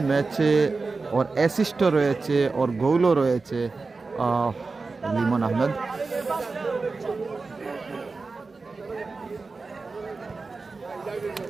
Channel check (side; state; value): left; quieter; 4.0 dB